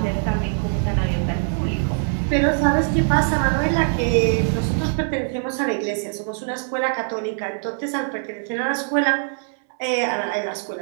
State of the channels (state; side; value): silent; left; digital silence